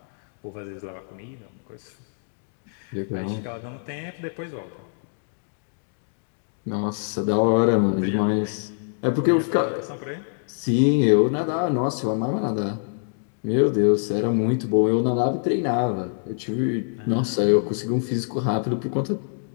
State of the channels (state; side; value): silent; right; digital silence